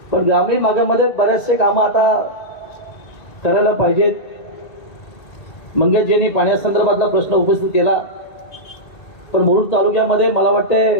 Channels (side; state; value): right; late; 1.9 ms